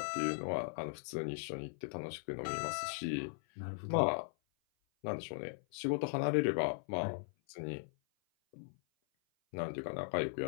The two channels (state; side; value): silent; right; 52 dB below the other